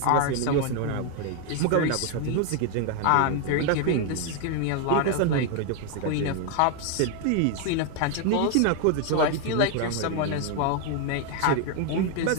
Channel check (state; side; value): different; both; correlation 0.00